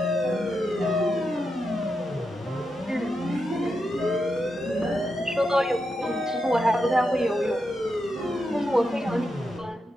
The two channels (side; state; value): both; normal; correlation 0.85